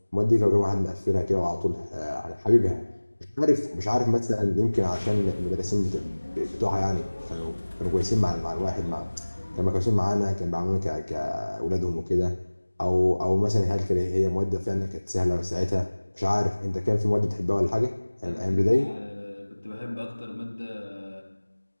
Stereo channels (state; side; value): inverted; both; correlation -1.00